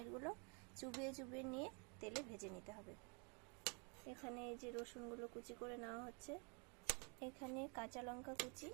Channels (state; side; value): quieter; left; 35.4 dB